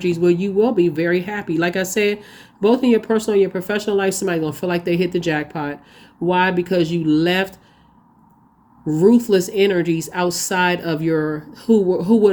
where you will be very happy. Like I said, both in your personal and your professional life, somebody's going to feel like they hit the jackpot. Why? Because you left ruthless energies outside of who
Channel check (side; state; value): both; identical; correlation 1.00